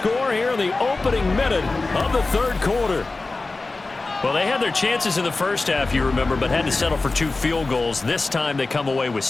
here in the opening minute of the 3rd quarter. Well, they had their chances in the first half, you remember, but had to settle for 2 field goals. This time they come away with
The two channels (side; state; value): right; quieter; 3.5 dB